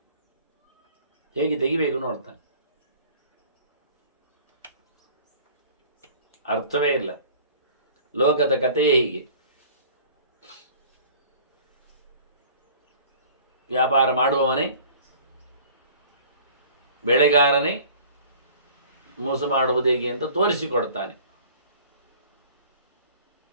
ಹೇಗೆ ತೆಗಿಬೇಕು ನೋಡ್ತಾನೆ. ಅರ್ಥವೇ ಇಲ್ಲ. ಲೋಕದ ಕಥೆಯೇ ಹೀಗೆ. ವ್ಯಾಪಾರ ಮಾಡುವವನೇ, ಬೆಳೆಗಾರನೇ ಮೋಸ ಮಾಡುವುದು ಹೇಗೆ ಅಂತ ತೋರಿಸಿಕೊಡ್ತಾನೆ.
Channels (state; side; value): inverted; both; correlation -0.48